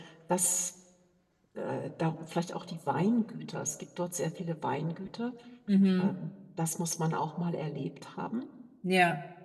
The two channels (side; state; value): both; identical; correlation 1.00